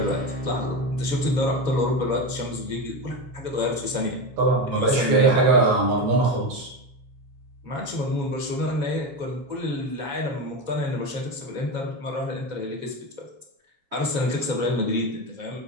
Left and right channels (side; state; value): left; late; 7.3 ms